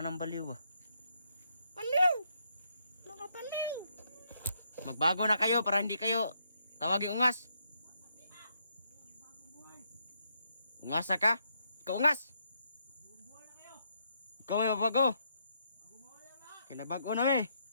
nang baliw ba? Paliw! Mga paliw! Magbago na kayo para hindi kayo tawagin ungas. Ungasa ka? Ikaw ungas! Ikaw may mabago. Kaya nabago na eh.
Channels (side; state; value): both; inverted; correlation -0.77